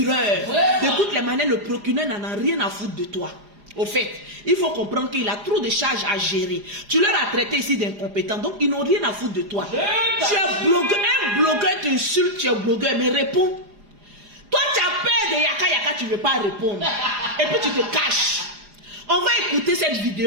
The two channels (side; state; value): left; late; 4.9 ms